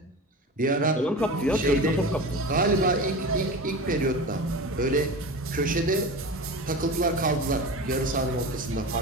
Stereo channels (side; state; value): both; normal; correlation 0.30